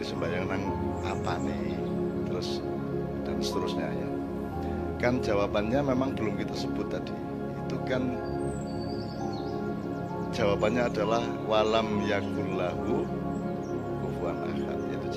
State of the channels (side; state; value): both; identical; correlation 1.00